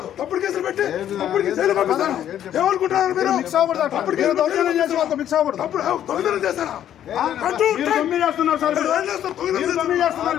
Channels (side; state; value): right; quieter; 10.7 dB